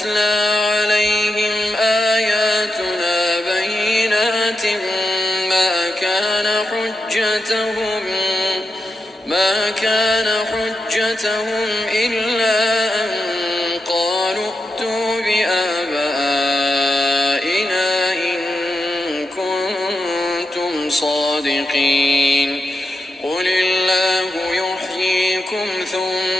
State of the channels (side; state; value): both; normal; correlation 0.87